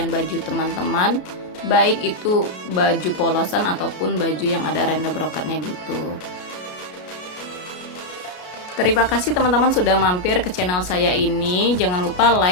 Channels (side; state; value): right; late; 33 ms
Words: baju teman-teman, baik itu baju polosan ataupun baju yang ada renda brokatnya gitu. Terima kasih teman-teman sudah mampir ke channel saya ini. Jangan lupa